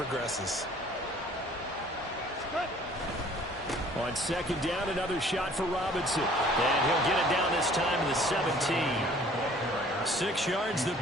On 2nd down, another shot for Robinson. And he'll get it down this time to the 17. 6 yards the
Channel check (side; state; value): both; normal; correlation 0.54